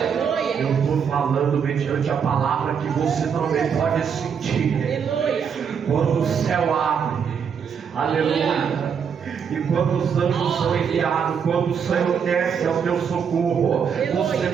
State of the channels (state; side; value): quieter; left; 7.0 dB